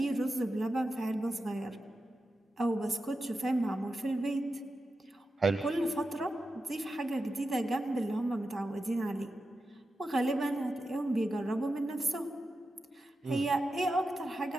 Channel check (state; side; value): normal; both; correlation 0.90